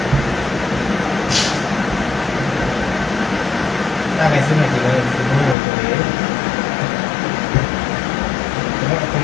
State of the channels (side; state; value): right; drops out; at 5.6 s